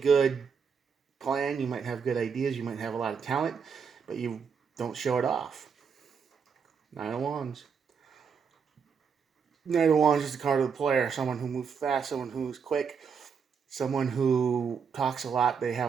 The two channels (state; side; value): quieter; left; 6.3 dB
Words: plan. You might have good ideas. You might have a lot of talent, but you don't show it off. Nine of Wands. Knight of Wands is the card of the player. Someone who moves fast, someone who moves quick, someone who talks a lot. They